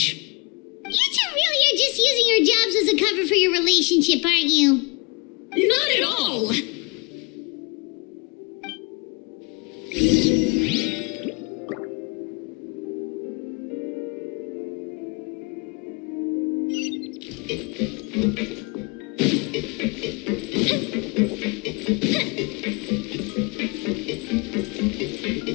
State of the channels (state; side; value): quieter; right; 29.7 dB